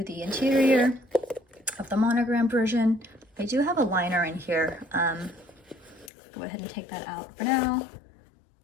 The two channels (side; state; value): right; drops out; at 6.1 s